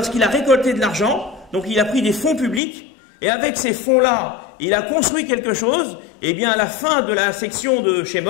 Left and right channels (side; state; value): right; drops out; at 2.6 s